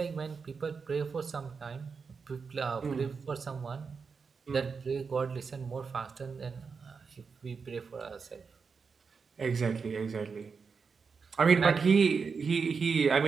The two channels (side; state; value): left; quieter; 5.3 dB